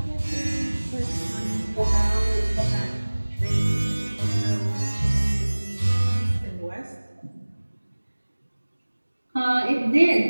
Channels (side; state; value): both; inverted; correlation -1.00